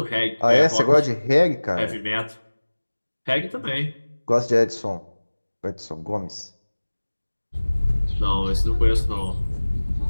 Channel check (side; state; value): both; inverted; correlation -1.00